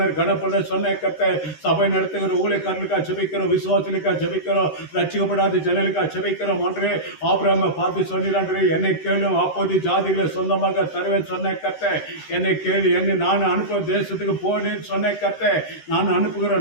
கணப்பட சொன்ன கர்த்தர் சபை நடத்துகிற ஊழியக்காரர்களுக்காக ஜெபிக்கிறோம். விசுவாசிகளுக்காக ஜெபிக்கிறோம். ரட்சிக்கப்படாத ஜனங்களுக்காக ஜெபிக்கிறோம். ஆண்டவரே ஆபிரகாமை பார்த்து சொன்னாரே, என்னை கேளும் அப்போது ஜாதிகளை சொந்தமாக தருவேன் சொன்ன கர்த்தர். என்னை கேளு, என்னை நான் அனுப்ப தேசத்துக்கு போனேன்னு சொன்ன கர்த்தர். நான்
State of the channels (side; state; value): right; late; 13 ms